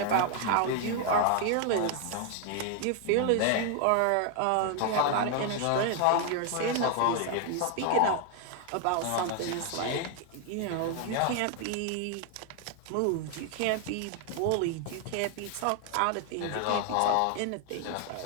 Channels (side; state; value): both; different; correlation 0.00